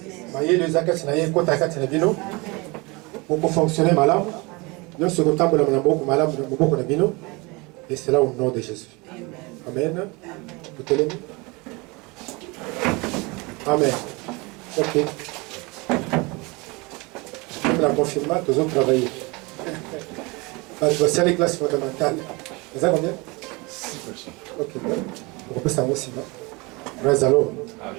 Maye le zakati na ye kota kati na bino. Pour fonctionner malade. Nous sommes contents de la beaucoup malade de beaucoup de bino. Et c'est là au nom de Jésus. Amen. Vous te l'aimez? Amen. Ok. Comme la confirmation, nous avons travaillé. C'est les classes fondamentales. Vous avez combien? 6 personnes. Ok. On peut savoir aussi. Alors.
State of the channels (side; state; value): left; quieter; 26.2 dB